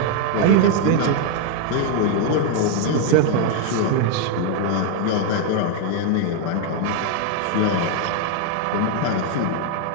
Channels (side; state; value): both; different; correlation 0.01